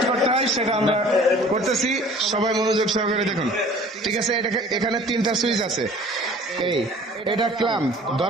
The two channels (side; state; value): both; normal; correlation 0.49